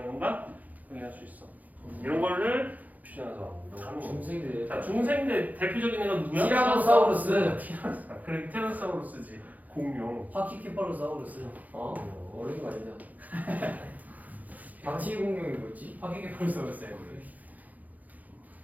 건가? 확인할 수 있어. 이런 거를 표현해서 중생들. 자, 중생대 대표적인 애가 누구야? 티라노사우루스. 그래, 티라노사우루스지. 공룡. 파키케파로사우루스. 어려운 거 아니잖아. 방치 공룡이 뭐지? 파키케파로사우루스예요 원래.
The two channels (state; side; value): late; left; 0.079 ms